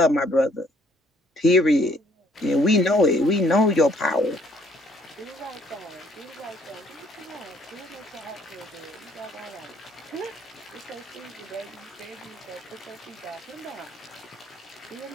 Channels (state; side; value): normal; both; correlation 0.64